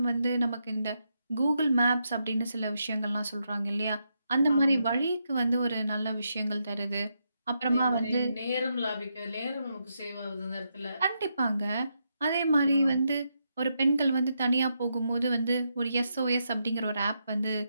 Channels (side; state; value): both; inverted; correlation -0.82